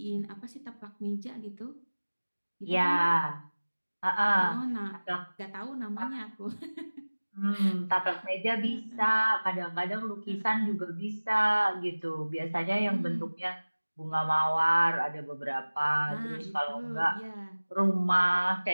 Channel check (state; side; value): inverted; both; correlation -1.00